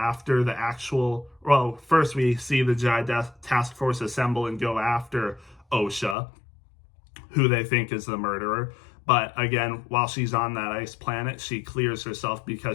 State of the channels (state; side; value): drops out; right; at 6.2 s